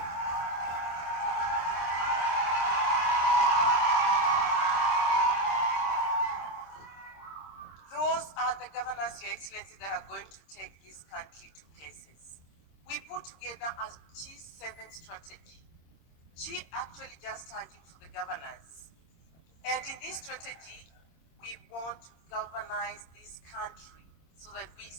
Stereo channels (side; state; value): right; late; 26 ms